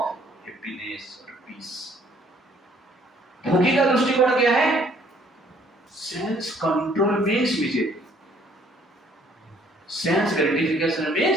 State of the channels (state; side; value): normal; both; correlation 0.62